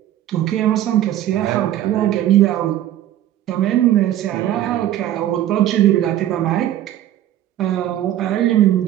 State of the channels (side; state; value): left; quieter; 12.4 dB